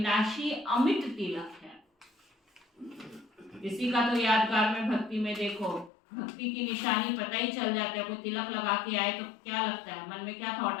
अमिट तिलक है। किसी का तो यादगार में भक्ति में देखो, भक्ति की निशानी पता ही चल जाता है। कोई तिलक लगा के आए तो क्या लगता है, मन में क्या थॉट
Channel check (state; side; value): drops out; right; at 5.9 s